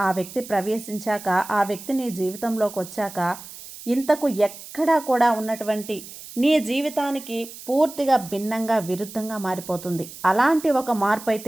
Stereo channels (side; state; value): right; noise; hiss, 15 dB below the sound